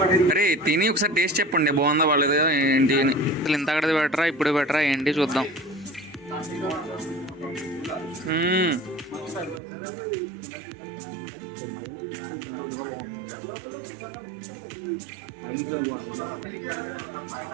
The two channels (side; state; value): left; drops out; at 9.6 s